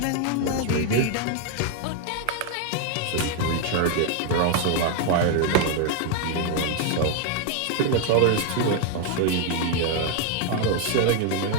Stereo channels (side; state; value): both; different; correlation 0.00